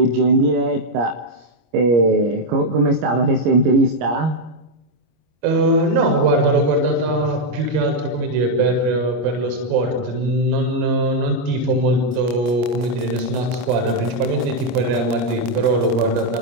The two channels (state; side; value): late; left; 25 ms